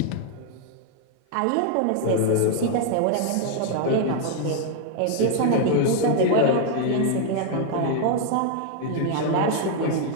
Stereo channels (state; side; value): different; both; correlation 0.00